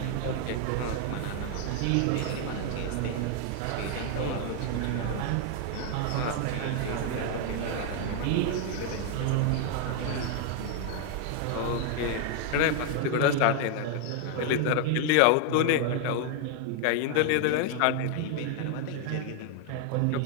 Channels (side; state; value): both; different; correlation 0.00